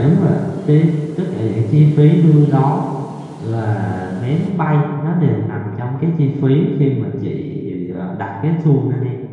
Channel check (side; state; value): both; identical; correlation 1.00